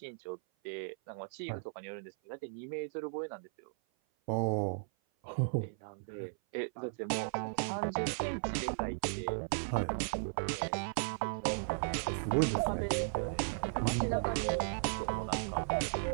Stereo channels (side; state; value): left; silent; 54 dB below the other